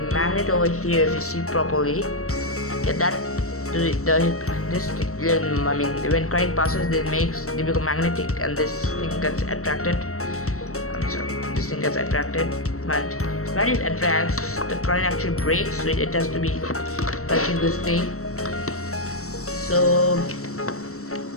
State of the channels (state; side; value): late; right; 0.64 ms